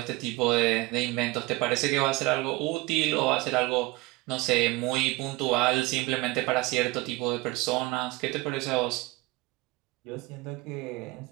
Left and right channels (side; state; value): left; quieter; 22.0 dB